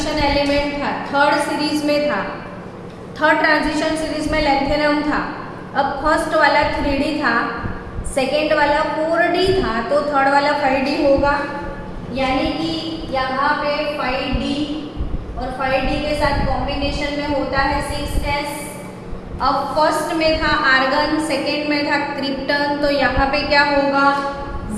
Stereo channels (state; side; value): identical; both; correlation 1.00